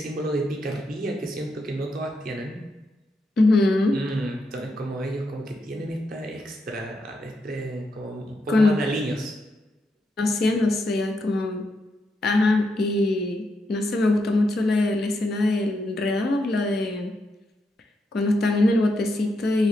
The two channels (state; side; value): normal; both; correlation 0.82